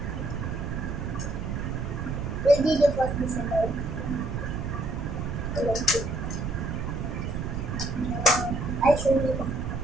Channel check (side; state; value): right; noise; rumble, 3 dB below the sound